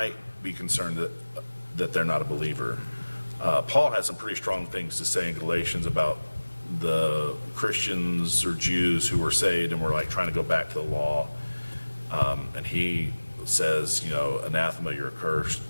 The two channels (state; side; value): inverted; both; correlation -1.00